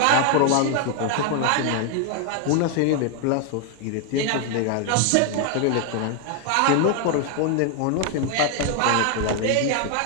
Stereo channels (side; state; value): both; different; correlation 0.00